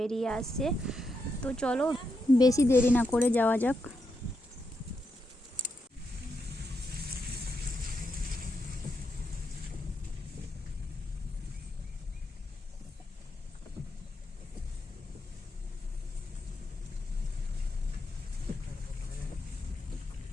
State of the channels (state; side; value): normal; both; correlation 0.83